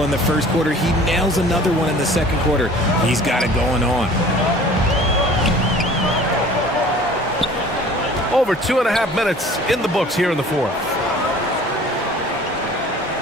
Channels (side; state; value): both; normal; correlation 0.47